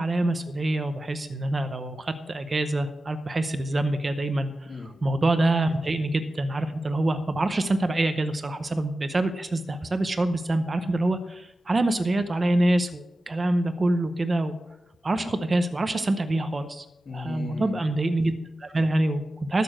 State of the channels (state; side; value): normal; both; correlation 0.94